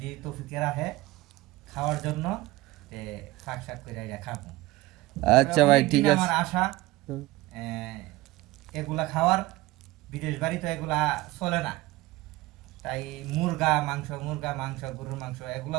তৌফিকে রাখে খাওয়ার জন্য পাক শাক কইরা এটা খাবো। তবে আচ্ছা ভাই, অনেক দিন ঠিক আছে। আমার আশা এগুলা খাওয়ার। বিদেশ বাড়ি তো এগুলা চলে না, তাই মুরগা মাংস গরুর মাংস এগুলা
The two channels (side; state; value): left; quieter; 18.7 dB